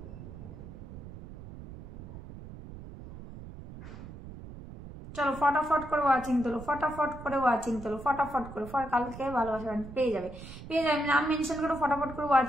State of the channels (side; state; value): right; noise; rumble, 13 dB below the sound